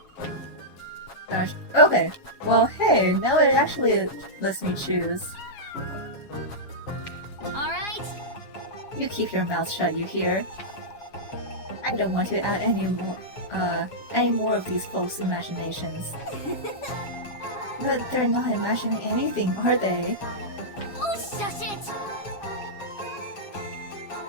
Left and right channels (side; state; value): right; late; 7.3 ms